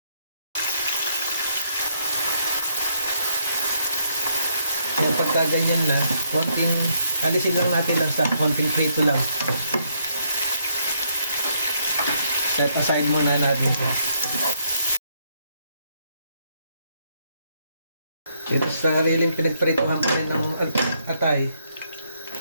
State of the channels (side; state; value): both; inverted; correlation -0.75